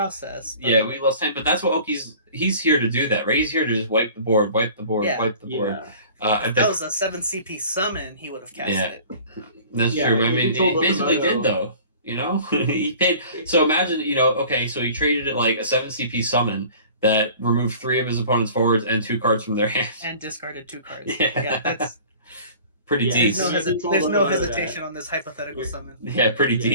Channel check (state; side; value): inverted; both; correlation -0.45